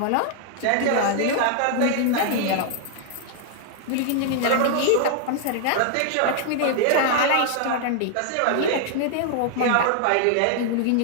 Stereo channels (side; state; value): both; different; correlation 0.00